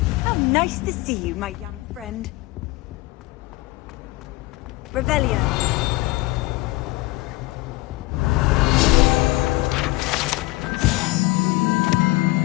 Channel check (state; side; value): quieter; right; 20.4 dB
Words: How nice to see you, my young friend. Revelio.